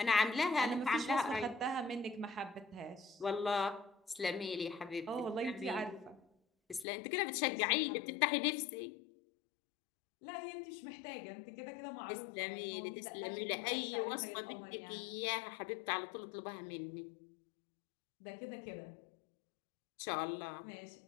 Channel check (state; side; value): drops out; right; at 6.9 s